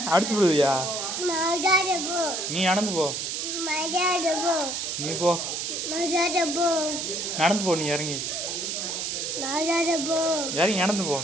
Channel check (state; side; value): noise; right; hiss, 3 dB below the sound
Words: அடிச்சு விடுவியா? நீ நடந்து போ. நீ போ. நடந்து போ. நீ இறங்கி இறங்கி நடந்து போ.